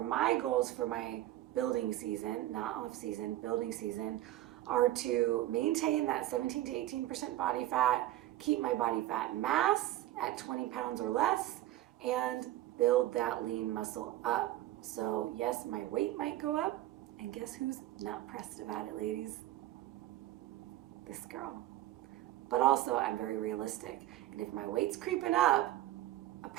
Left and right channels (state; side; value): quieter; left; 14.8 dB